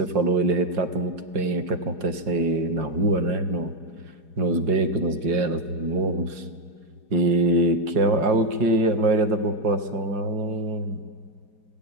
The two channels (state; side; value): late; left; 4.9 ms